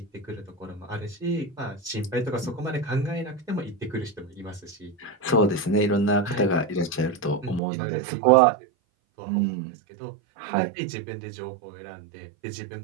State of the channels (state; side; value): drops out; left; at 7.6 s